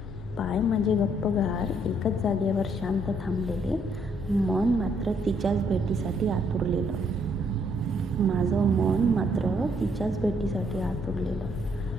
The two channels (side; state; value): both; normal; correlation 0.70